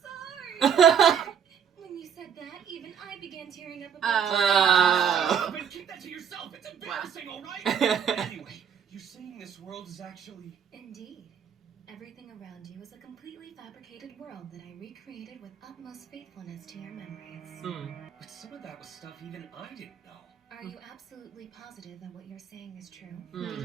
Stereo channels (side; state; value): left; quieter; 7.9 dB